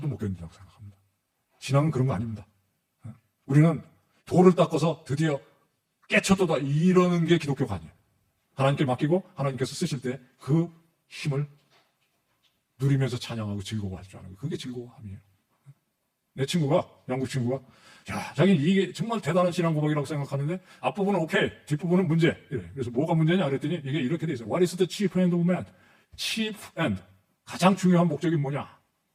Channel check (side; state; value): both; identical; correlation 1.00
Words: 못 견딘다고 생각합니다. 신앙은 그런 거 아닙니다. 우리는 돌을 닦아서 드디어 깨쳤도다 이러는 게 기독교가 아니에요. 하나님께 맡기고 하나님께서 쓰실 때 그 힘을 누리면서 찬양하고 즐거워할 줄 아는 거예요. 그게 즐거움이에요. 내 친구가, 영국 친구가, 야, 자기는 이게 정말 대단한 신앙 고백이라고 생각하는데 앞부분은 오케이, 뒷부분은 문제. 이래. 그래서 뭐가 문제냐 그랬더니 이게 이렇게 돼 있어요. What is the chief end of man? chief end. 가장 중요한 목적이 뭐냐?